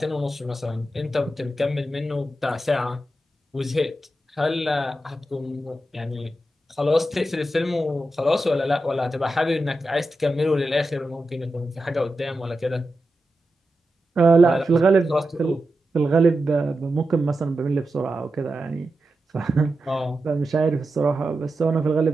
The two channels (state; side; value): normal; both; correlation 0.90